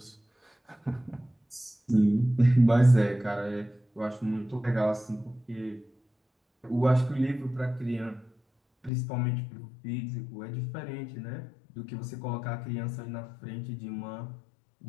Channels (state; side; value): drops out; right; at 8.9 s